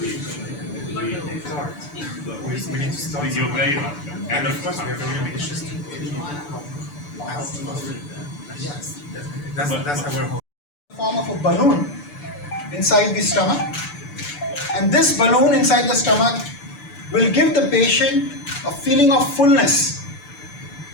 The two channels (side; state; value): right; late; 6.9 ms